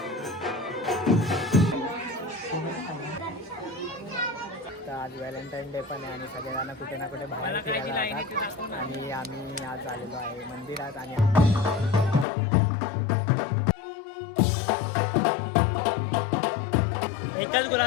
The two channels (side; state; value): right; drops out; at 12.2 s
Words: तर आज व्हॅलेंटाईन डे पण आहे आणि सगळ्यांना कुठे ना कुठे बाहेर फिरायला जातात. आणि आम्ही आज आलेलो आहे मंदिरात. आणि एकच